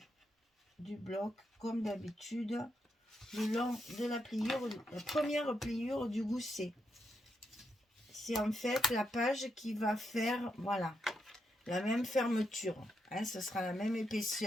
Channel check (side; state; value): both; normal; correlation 0.81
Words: du bloc, comme d'habitude, le long de la pliure, la première pliure du gousset. C'est en fait la page qui va faire, voilà, la même fermeture, hein, ce sera la même